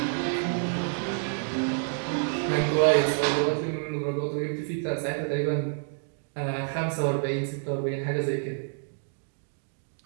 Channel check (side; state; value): left; silent; digital silence